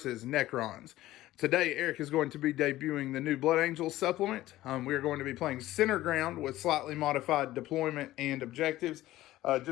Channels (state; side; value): quieter; right; 15.6 dB